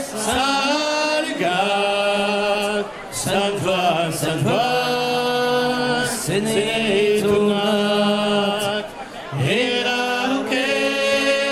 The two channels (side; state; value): both; identical; correlation 1.00